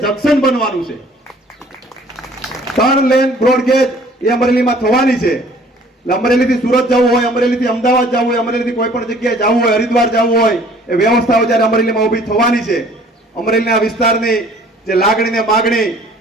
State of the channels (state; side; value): normal; both; correlation 0.54